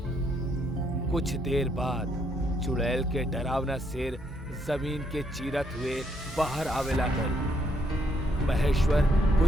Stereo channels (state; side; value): normal; both; correlation 0.73